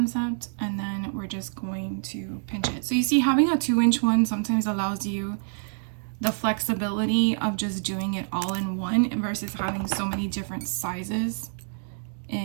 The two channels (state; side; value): silent; left; digital silence